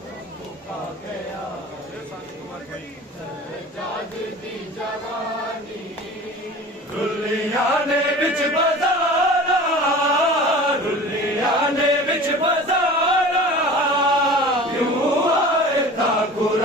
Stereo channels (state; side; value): normal; both; correlation 0.39